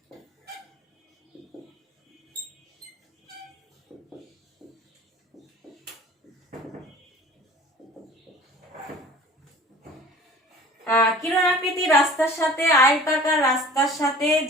কিরণ আকৃতি রাস্তার সাথে আয়তাকার রাস্তার সাথে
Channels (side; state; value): both; normal; correlation 0.44